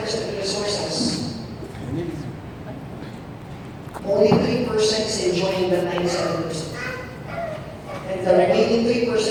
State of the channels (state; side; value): identical; both; correlation 1.00